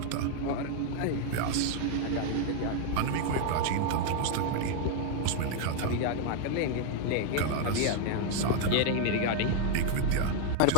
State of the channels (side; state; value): both; different; correlation 0.00